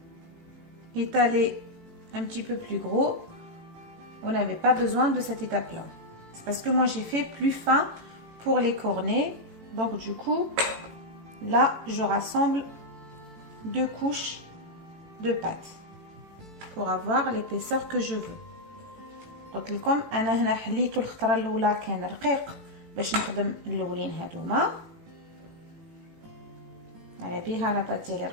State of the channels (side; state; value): left; late; 18 ms